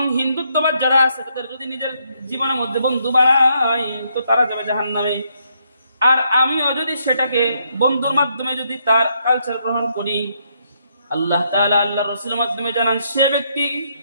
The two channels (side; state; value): both; inverted; correlation -0.75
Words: হিন্দুত্ববাদ যারা আছে, তাদের যদি নিজের জীবনের মধ্যে বন্ধু বানাই, তো তারা যাবে জাহান্নামে। আর আমিও যদি সেটাকে বন্ধুর মাধ্যমে যদি তার কালচার গ্রহণ করি, আল্লাহ তাআলা আল্লাহর রাসূলের মাধ্যমে জানান, সে ব্যক্তি